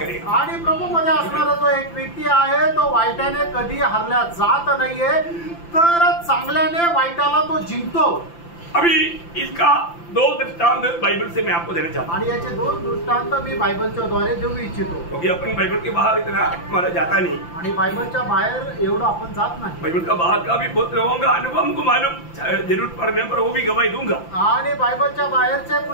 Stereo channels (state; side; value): late; right; 5.9 ms